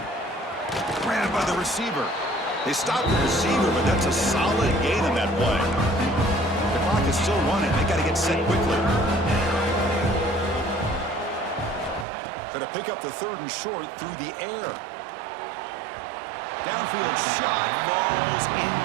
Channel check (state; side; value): drops out; left; at 12.1 s